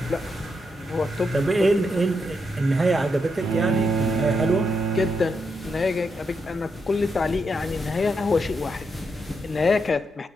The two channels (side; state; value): both; normal; correlation 0.82